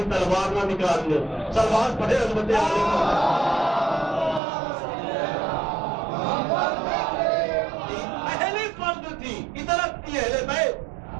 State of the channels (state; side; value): drops out; left; at 4.4 s